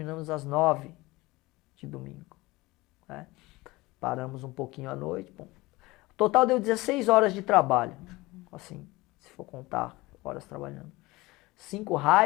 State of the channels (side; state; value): right; quieter; 21.1 dB